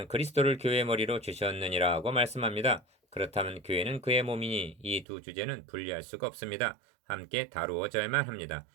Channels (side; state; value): left; drops out; at 5.1 s